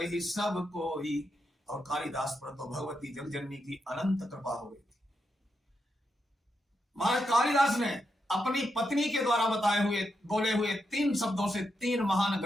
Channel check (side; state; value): both; normal; correlation 0.84